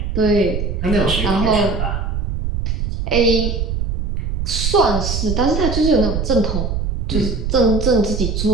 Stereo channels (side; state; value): right; noise; rumble, 2 dB below the sound